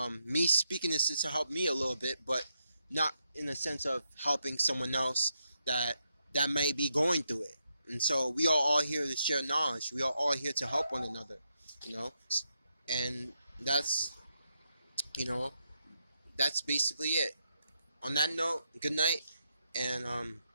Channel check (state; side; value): inverted; both; correlation -0.82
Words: Me speaking this is to help me a little bit, but not in the sense of helping someone else that may be going through it. And so we are all here to share knowledge. We are all here to help one another, and that's that's basically it. On that note, good night, and